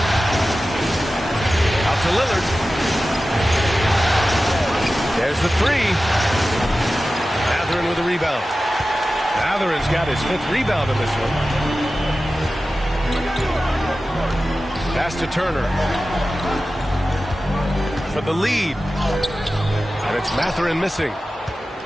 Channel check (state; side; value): normal; both; correlation 0.94